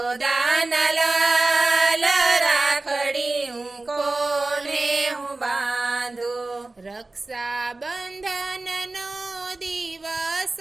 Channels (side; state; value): left; quieter; 3.2 dB